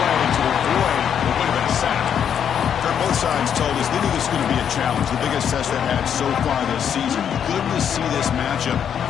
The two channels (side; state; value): right; quieter; 8.4 dB